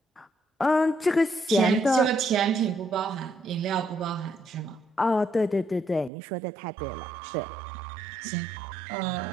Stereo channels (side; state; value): left; drops out; at 6.1 s